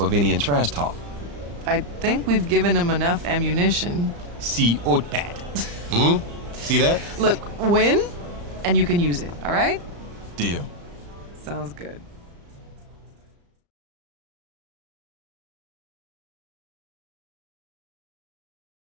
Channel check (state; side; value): late; left; 35 ms